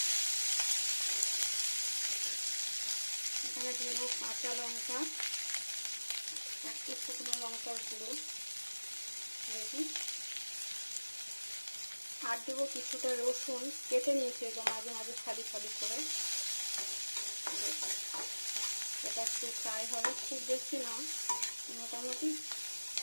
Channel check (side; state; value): both; inverted; correlation -1.00